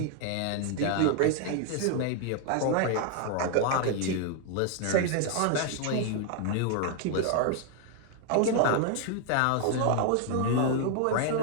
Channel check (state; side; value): different; both; correlation 0.00